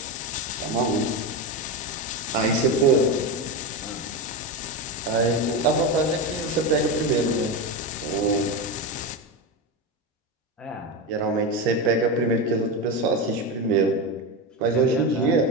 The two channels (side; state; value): both; normal; correlation 0.16